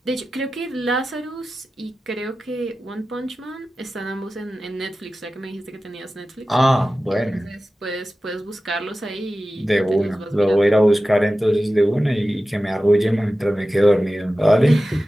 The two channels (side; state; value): both; normal; correlation 0.95